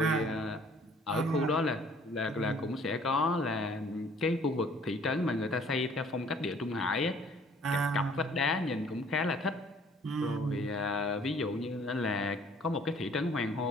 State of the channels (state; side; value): normal; both; correlation 0.57